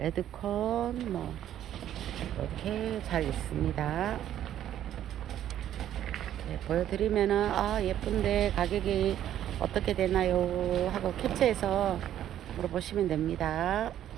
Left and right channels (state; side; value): quieter; left; 11.3 dB